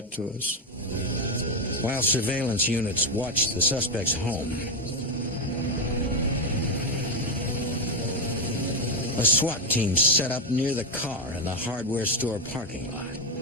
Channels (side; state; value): both; normal; correlation 0.07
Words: to us. While surveillance units watched the suspect's home, a SWAT team set up near the car in the hardware store parking lot.